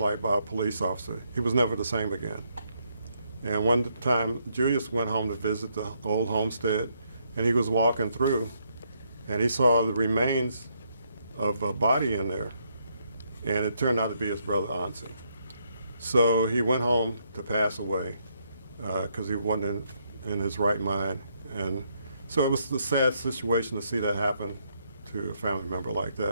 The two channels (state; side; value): inverted; both; correlation -0.75